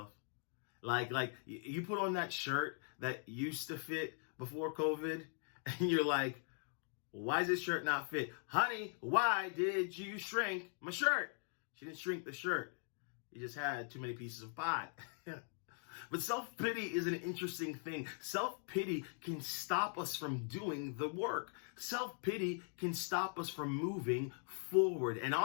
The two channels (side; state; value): right; silent; 50 dB below the other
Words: Like you put on that shirt that used to fit before COVID and you're like, why does this shirt not fit? Honey, why did you shrink my shirt? She didn't shrink the shirt. You just had too many pieces of pie. But self-pity is an interesting thing. Self-pity can stop us from doing the work. Self-pity can stop us from moving forward. And